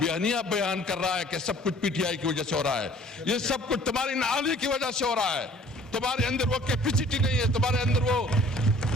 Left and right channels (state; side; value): normal; both; correlation 0.53